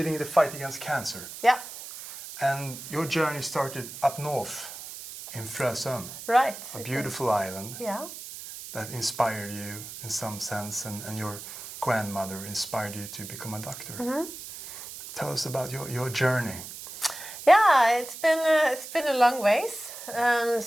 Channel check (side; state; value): right; noise; hiss, 12 dB below the sound